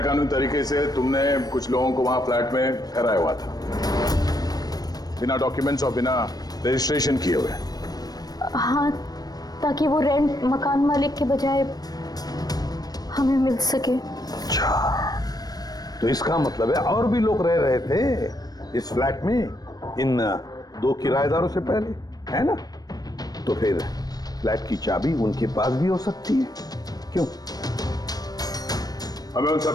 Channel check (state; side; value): late; right; 0.19 ms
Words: कानूनी तरीके से तुमने कुछ लोगों को वहां फ्लैट में ठहराया हुआ था, बिना डॉक्यूमेंट्स और बिना रजिस्ट्रेशन किए हुए। हाँ, ताकि वो रेंट मकान मालिक के बजाय हमें मिल सके। अच्छा, तो इसका मतलब है और भी लोग रह रहे थे इस फ्लैट में इन 2 किराएदारों से पहले, है ना? तो फिर फ्लैट की चाबी उनके पास भी हो सकती है, क्यों? हमें उन